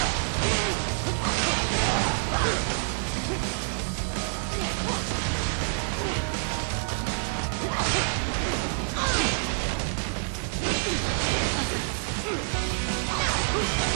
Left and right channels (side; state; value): left; silent; digital silence